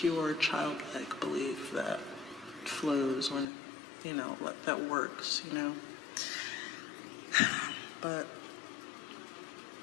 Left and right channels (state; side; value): drops out; right; at 3.5 s